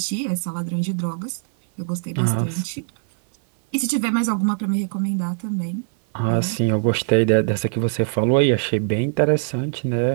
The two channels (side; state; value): left; silent; 58 dB below the other